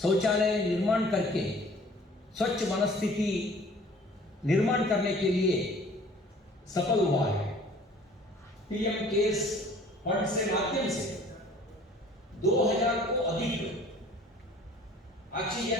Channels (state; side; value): normal; both; correlation 0.51